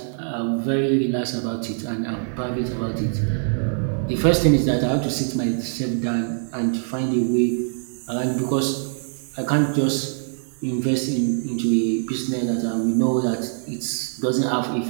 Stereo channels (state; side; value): silent; left; 56 dB below the other